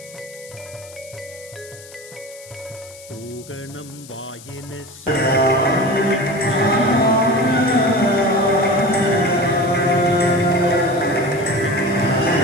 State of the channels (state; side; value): noise; left; hiss, 19 dB below the sound